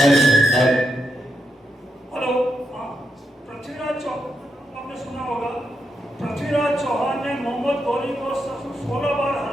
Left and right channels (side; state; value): both; normal; correlation 0.83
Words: हेलो, पृथ्वीराज चौहान आपने सुना होगा। पृथ्वीराज चौहान ने मोहम्मद गौरी को 16 बार